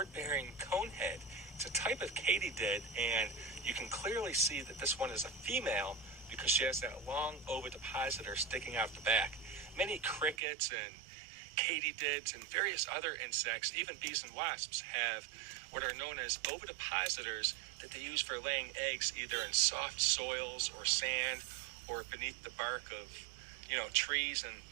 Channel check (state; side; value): drops out; left; at 10.4 s